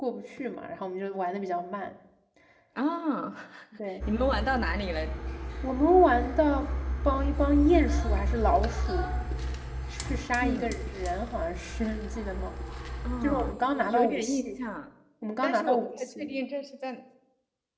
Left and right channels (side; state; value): both; identical; correlation 1.00